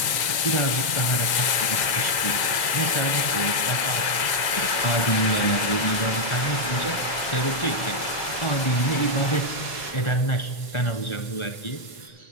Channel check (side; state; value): right; late; 2.0 ms